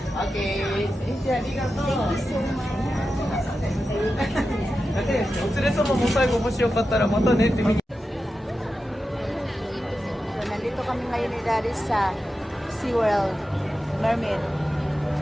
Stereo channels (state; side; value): normal; both; correlation 0.91